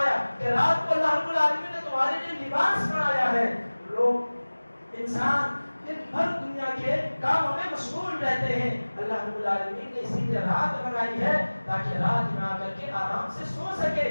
کہ رات کو اللہ رب العالمین نے تمہارے لیے لباس بنایا ہے. لوگ انسان دن بھر دنیا کے کاموں میں مشغول رہتے ہیں. اللہ رب العالمین نے اسی لیے رات بنائی ہے تاکہ رات میں آ کر کے آرام سے سو سکے,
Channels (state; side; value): inverted; both; correlation -1.00